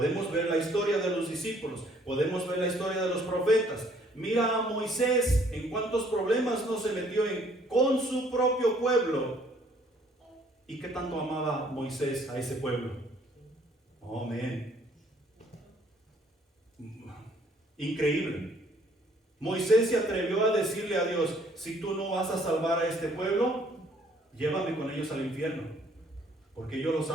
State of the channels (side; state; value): both; normal; correlation 0.62